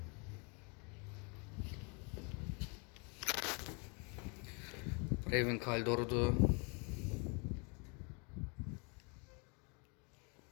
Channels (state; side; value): quieter; right; 33.7 dB